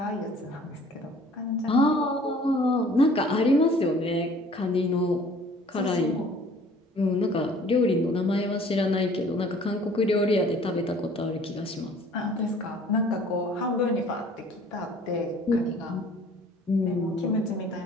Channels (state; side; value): normal; both; correlation 0.52